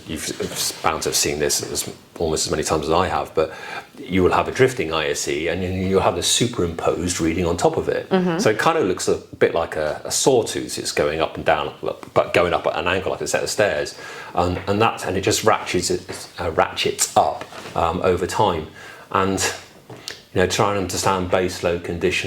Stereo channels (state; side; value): identical; both; correlation 1.00